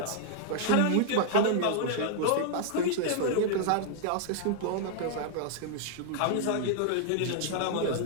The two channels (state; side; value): different; both; correlation -0.01